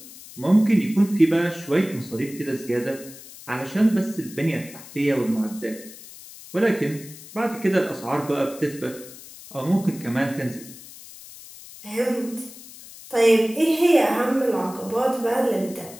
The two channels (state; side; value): noise; left; hiss, 17 dB below the sound